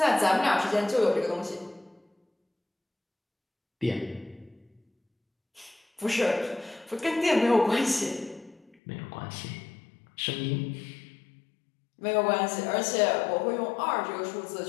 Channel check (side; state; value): right; drops out; at 8.8 s